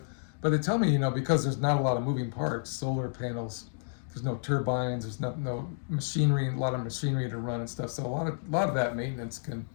they tell me because there's not a lot of moving parts, solar panels. There's no turbines. There's no machinery, a lot of machinery to run and stuff. So a lot of that maintenance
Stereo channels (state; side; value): silent; right; digital silence